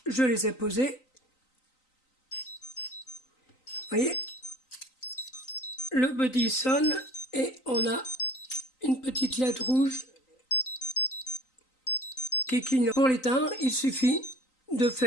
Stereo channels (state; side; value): late; right; 3.9 ms